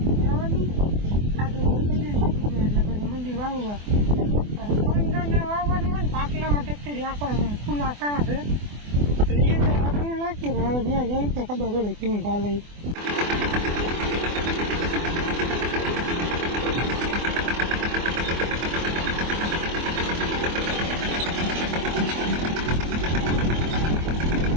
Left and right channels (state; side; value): late; left; 24 ms